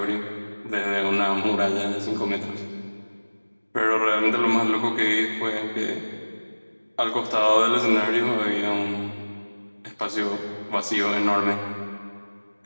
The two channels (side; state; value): both; inverted; correlation -1.00